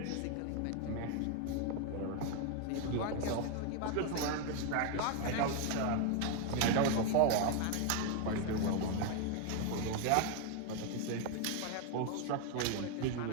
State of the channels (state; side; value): different; both; correlation 0.01